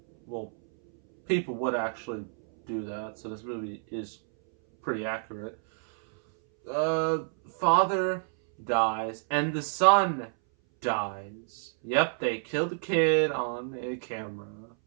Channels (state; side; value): silent; left; 59 dB below the other